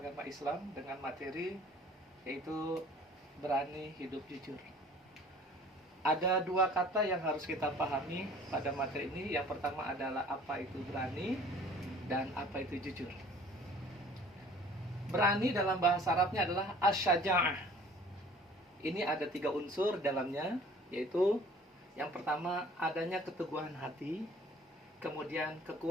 Islam dengan materi yaitu berani hidup jujur. Ada dua kata yang harus kita pahami pada materi ini. Yang pertama adalah apa itu berani dan apa itu jujur. Berani dalam bahasa Arabnya adalah asyaja'ah. Ini ada 3 unsur dalamnya, yaitu yang pertama adanya keteguhan hati, kemudian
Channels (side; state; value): both; normal; correlation 0.50